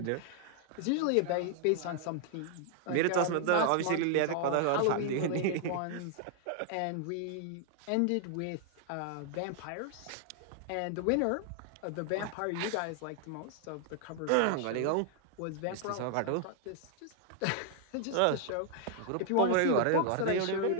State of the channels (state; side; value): different; both; correlation 0.00